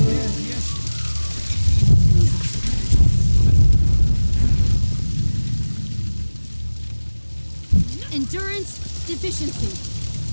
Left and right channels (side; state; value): both; inverted; correlation -1.00